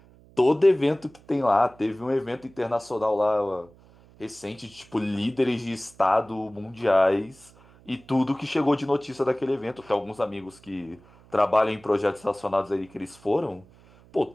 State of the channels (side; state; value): right; noise; hum, 26 dB below the sound